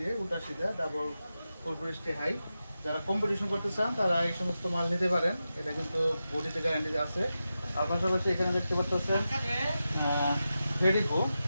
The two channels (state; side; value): inverted; both; correlation -0.91